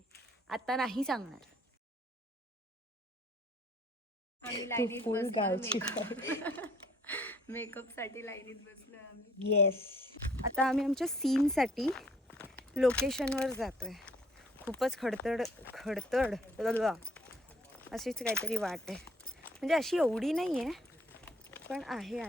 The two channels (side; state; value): both; normal; correlation 0.60